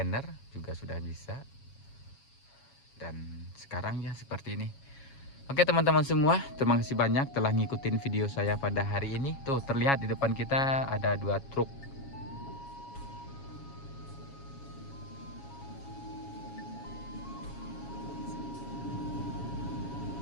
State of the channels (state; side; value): late; right; 7.2 ms